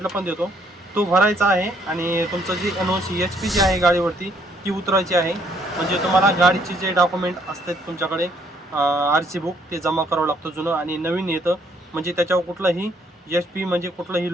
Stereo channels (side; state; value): both; normal; correlation 0.67